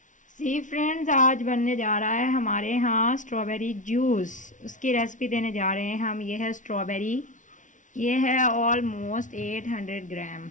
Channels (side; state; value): right; late; 0.37 ms